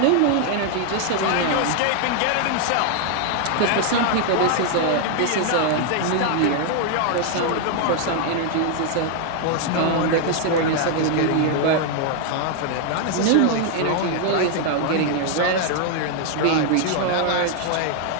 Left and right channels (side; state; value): both; different; correlation 0.00